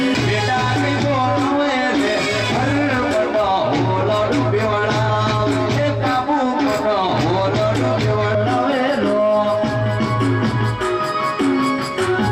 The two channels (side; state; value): both; identical; correlation 1.00